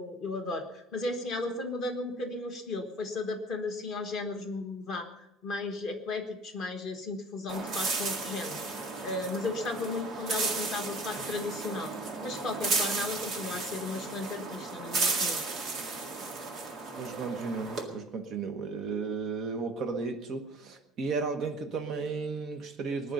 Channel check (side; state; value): both; normal; correlation 0.46